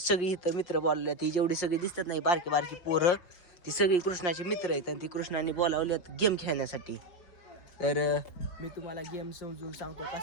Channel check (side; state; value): right; late; 5.6 ms